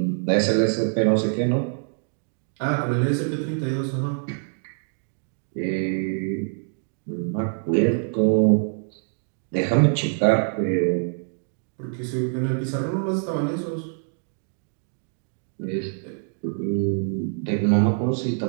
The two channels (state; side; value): silent; left; digital silence